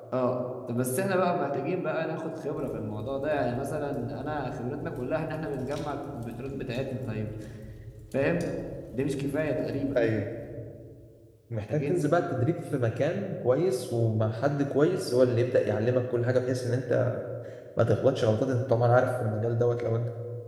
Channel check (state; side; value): identical; both; correlation 1.00